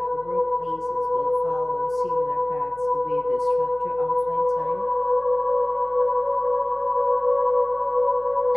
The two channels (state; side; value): noise; left; hum, 26 dB below the sound